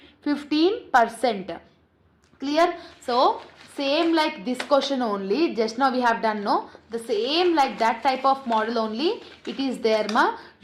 15%. Clear? So same like this question only, just now we have done, no? The same like that type of model only it is there ma.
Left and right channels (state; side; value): identical; both; correlation 1.00